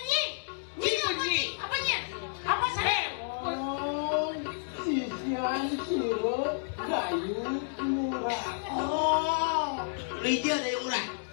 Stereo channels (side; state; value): right; silent; digital silence